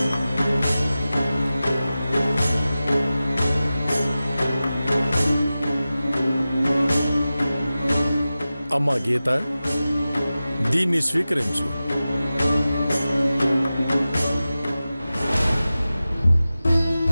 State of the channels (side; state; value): both; inverted; correlation -0.95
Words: అమ్మా గీత, దీన్ని స్వీకరించు.